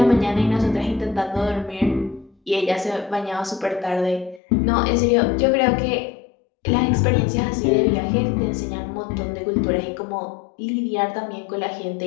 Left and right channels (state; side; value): drops out; right; at 4.4 s